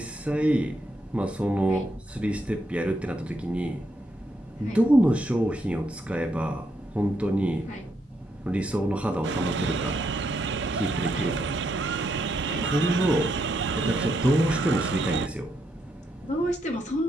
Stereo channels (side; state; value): both; normal; correlation 0.78